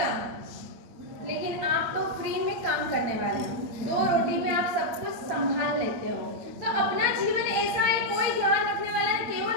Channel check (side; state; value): left; late; 8.4 ms